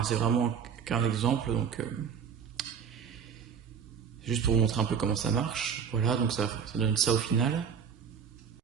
C'est vraiment qu'un exemple, donc juste pour vous montrer un peu comment ça marche. Voilà, donc ça donne ça au final.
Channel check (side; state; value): left; quieter; 7.1 dB